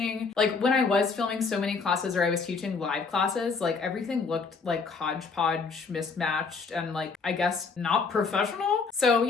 like when I was filming so many classes or I was teaching live classes, like everything looked like hodgepodge, mismatched, and like, I guess not professional. So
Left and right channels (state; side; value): quieter; right; 4.8 dB